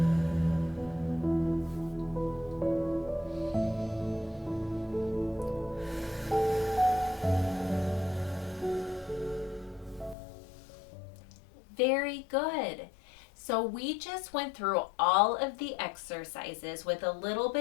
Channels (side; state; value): right; drops out; at 10.2 s